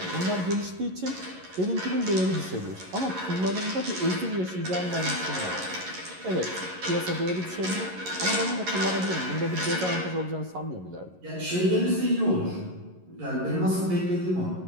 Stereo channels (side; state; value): left; late; 11 ms